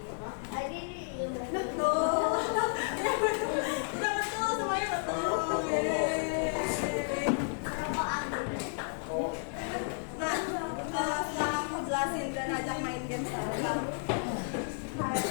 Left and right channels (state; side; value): silent; right; 56 dB below the other